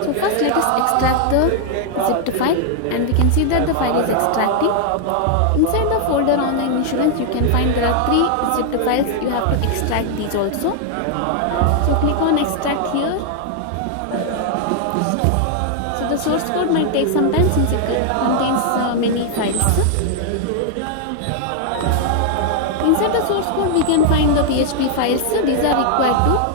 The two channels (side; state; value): both; different; correlation 0.00